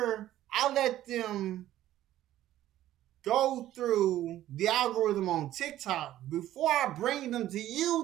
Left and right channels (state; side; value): quieter; left; 13.4 dB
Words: I let them go through the algorithm on TikTok, before I bring them to